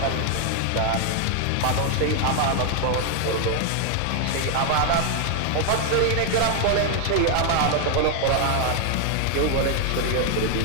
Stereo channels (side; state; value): both; different; correlation 0.00